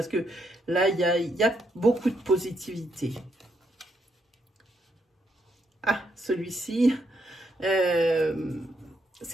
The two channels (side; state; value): both; normal; correlation 0.77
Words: que là, il y a beaucoup de positivité. Ah, celui-ci,